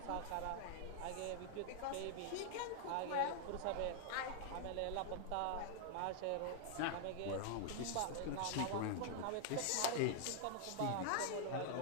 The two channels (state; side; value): different; both; correlation 0.00